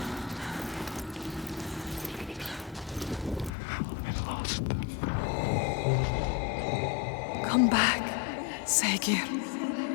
Come back, Saegir.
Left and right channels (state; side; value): drops out; right; at 3.5 s